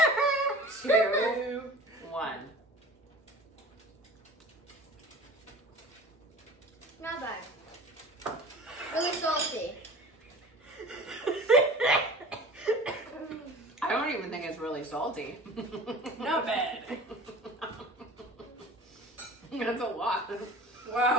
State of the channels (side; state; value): both; normal; correlation 0.41